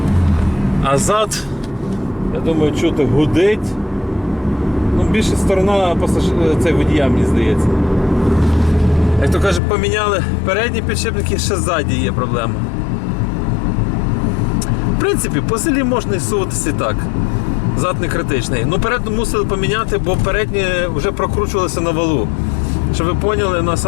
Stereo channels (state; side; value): drops out; right; at 9.6 s